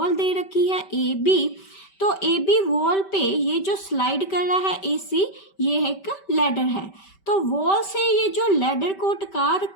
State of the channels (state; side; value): late; right; 5.2 ms